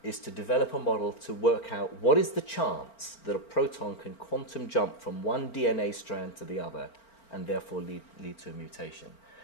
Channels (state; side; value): late; right; 4.4 ms